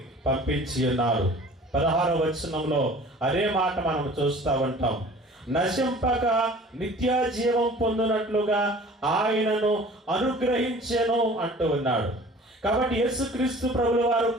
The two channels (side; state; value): both; normal; correlation 0.46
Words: పంపించి ఉన్నారు. 16వ వచనంలో అదే మాట మనం చూస్తూ ఉంటాం. నశింపక నిత్య జీవం పొందినట్లుగా ఆయనను అనుగ్రహించెను అంటూ ఉన్నాడు. కాబట్టి యేసుక్రీస్తు ప్రభుల వారు